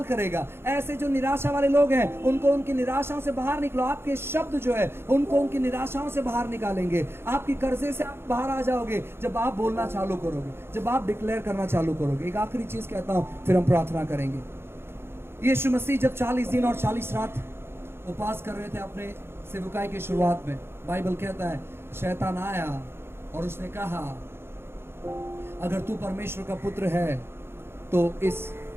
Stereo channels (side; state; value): left; late; 0.11 ms